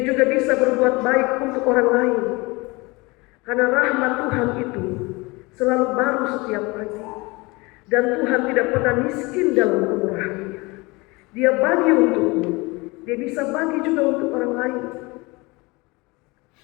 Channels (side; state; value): right; quieter; 24.7 dB